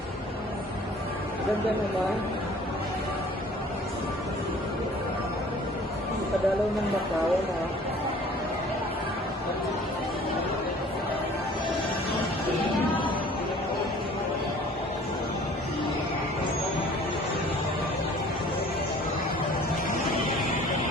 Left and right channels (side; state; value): both; normal; correlation 0.50